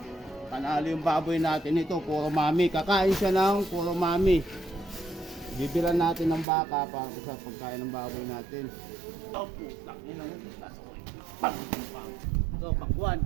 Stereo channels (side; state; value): left; drops out; at 6.5 s